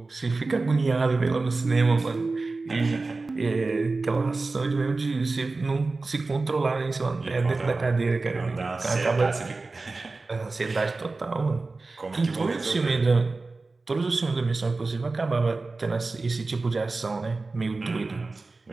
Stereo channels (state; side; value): quieter; left; 3.6 dB